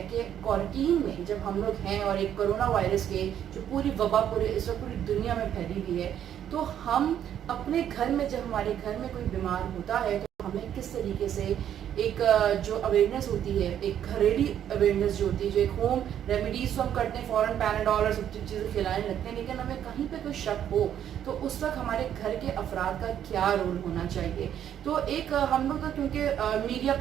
कि क्वारंटीन में जब हम लोग हैं और एक कोरोना वायरस के जो पूरी वबा पूरे इस वक्त पूरी दुनिया में फैली हुई है, तो हम अपने घर में जब हमारे घर में कोई बीमार होता है तो हमें किस तरीके से एक जो अवेयरनेस होती है, एक घरेलू अवेयरनेस जो होती है, जो एक होम रेमेडीज तो हम करते हैं, फ़ौरन पैनाडॉल और सब चीज़ें खिलाने लगते हैं, लेकिन हमें कहीं पे कोई शक हो तो उस वक्त हमारे घर के अफराद का क्या रोल होना चाहिए। तो एक हम लोग तो क्योंकि मीडिया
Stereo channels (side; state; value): left; quieter; 10.0 dB